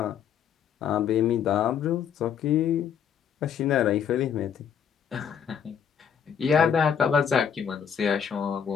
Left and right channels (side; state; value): right; quieter; 7.9 dB